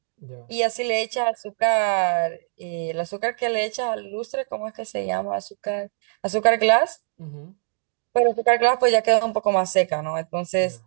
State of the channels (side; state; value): left; silent; digital silence